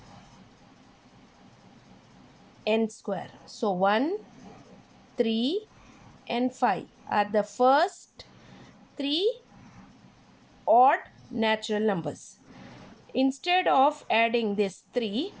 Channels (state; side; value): identical; both; correlation 1.00